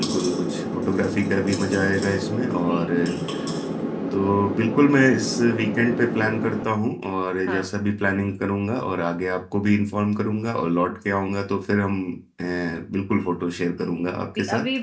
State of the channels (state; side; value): identical; both; correlation 1.00